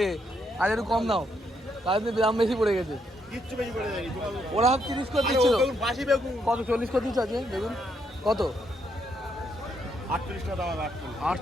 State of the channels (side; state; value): both; normal; correlation 0.75